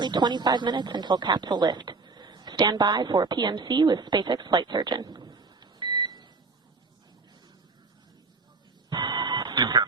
25 minutes until capsule lift. Stand by for PMC with SpaceX flight surgeon.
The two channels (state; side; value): quieter; left; 4.0 dB